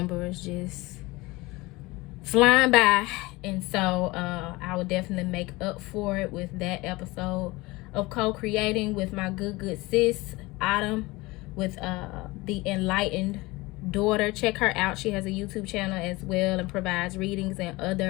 is just flying by, and so I will definitely make up for it with that episode of co-creating with my good sis Autumn, with the enlightened daughter. Check her out. She has a YouTube channel as well and provides readings and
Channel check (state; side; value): quieter; right; 21.9 dB